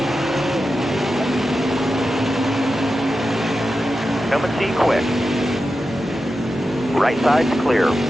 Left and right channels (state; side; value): normal; both; correlation 0.91